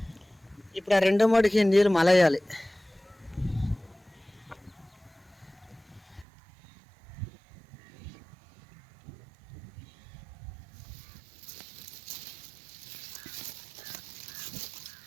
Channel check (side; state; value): left; drops out; at 6.2 s